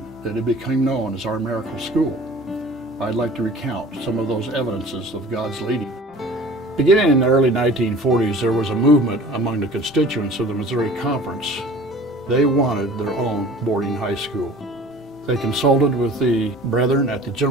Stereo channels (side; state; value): both; normal; correlation 0.45